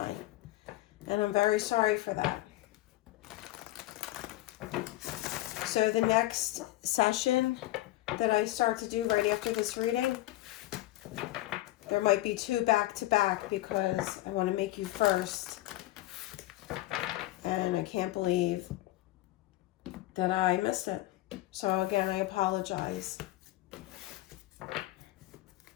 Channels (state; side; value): quieter; right; 17.2 dB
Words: And I'm very sorry for that. So the next session that I start to do right after this reading, there might be 2 back-to-back because I want to make you first. And I can't believe that I missed it. So again, I apologize.